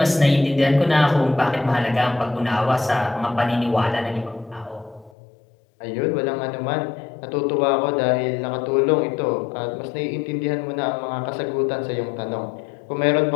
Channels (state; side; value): drops out; right; at 5.2 s